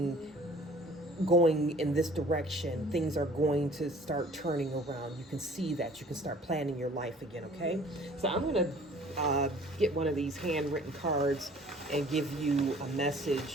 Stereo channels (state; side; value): normal; both; correlation 0.51